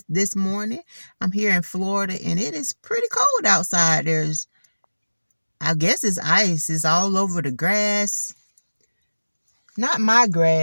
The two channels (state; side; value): inverted; both; correlation -1.00